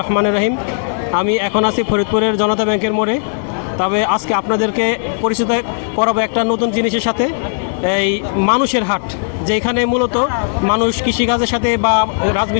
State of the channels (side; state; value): right; silent; 69 dB below the other